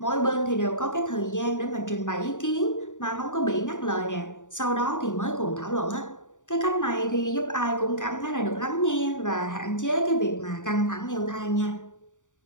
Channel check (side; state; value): right; late; 0.86 ms